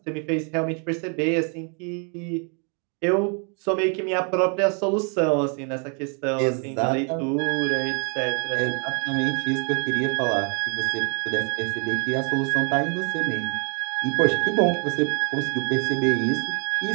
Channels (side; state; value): left; quieter; 38.5 dB